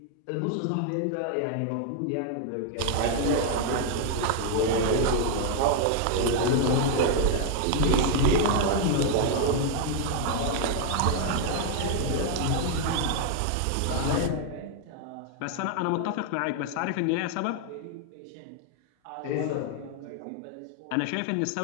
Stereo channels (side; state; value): both; different; correlation 0.00